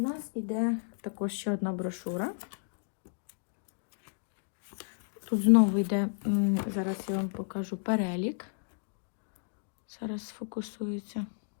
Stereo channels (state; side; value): silent; right; digital silence